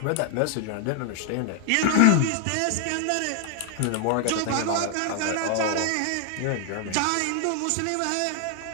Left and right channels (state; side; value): different; both; correlation 0.00